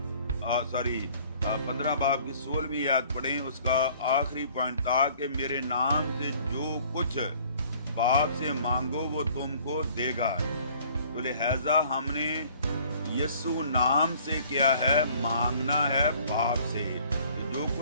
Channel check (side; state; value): both; inverted; correlation -0.55